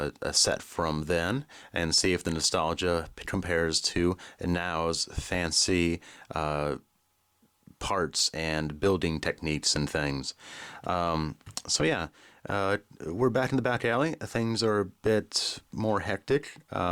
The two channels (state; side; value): identical; both; correlation 1.00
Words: set from then and see if the nostalgia compares to now's fancy parts and building techniques and things. We're back in the back alley. Things are a bit more hectic.